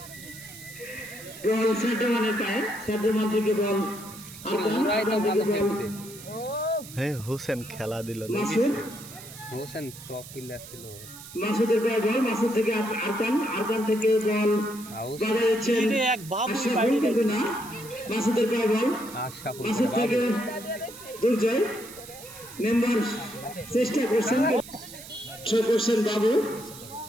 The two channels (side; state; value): right; noise; hiss, 16 dB below the sound